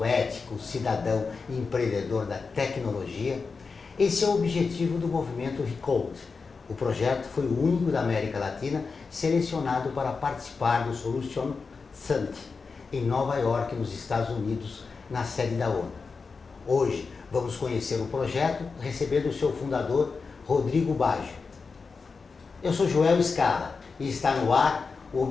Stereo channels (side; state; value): right; quieter; 4.7 dB